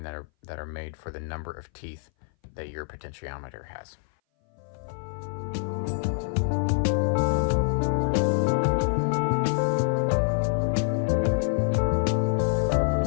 that are made for the number of teeth that your potentiometer has.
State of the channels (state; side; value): silent; right; 58 dB below the other